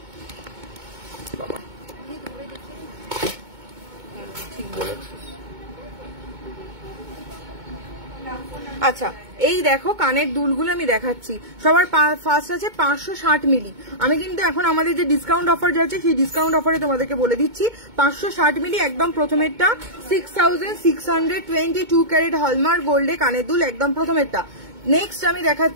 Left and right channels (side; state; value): left; late; 2.2 ms